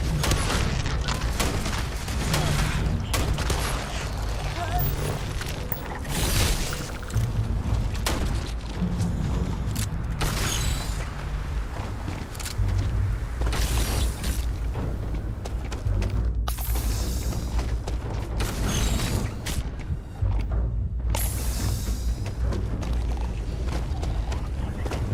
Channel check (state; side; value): identical; both; correlation 1.00